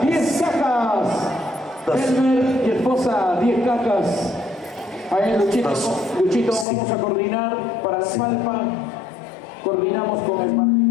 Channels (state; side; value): drops out; right; at 6.7 s